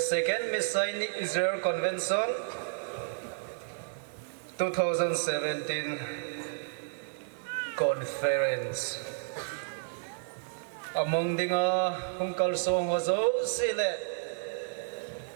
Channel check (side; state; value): left; silent; digital silence